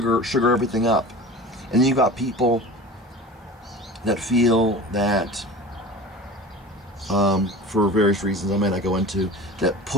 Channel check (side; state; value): both; normal; correlation 0.36